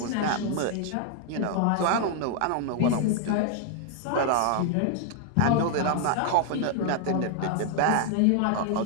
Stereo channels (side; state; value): both; different; correlation 0.00